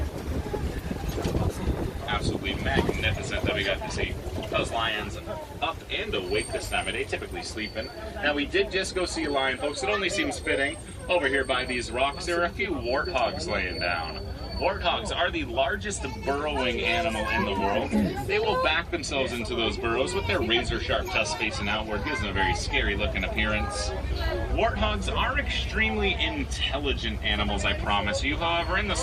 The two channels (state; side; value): identical; both; correlation 1.00